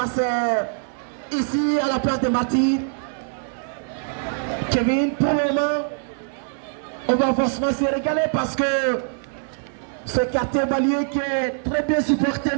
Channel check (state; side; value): silent; left; 61 dB below the other